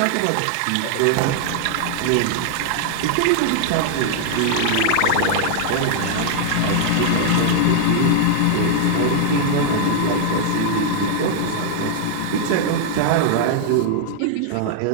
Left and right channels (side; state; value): both; different; correlation -0.01